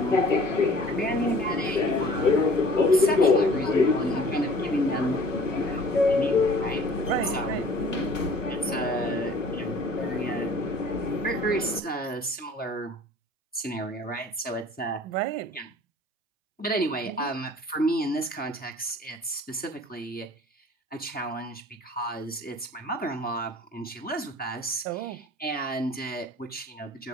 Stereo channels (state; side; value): normal; both; correlation 0.50